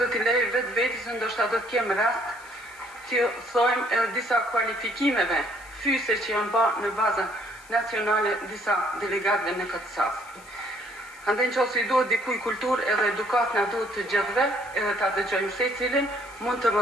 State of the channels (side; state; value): left; noise; hiss, 24 dB below the sound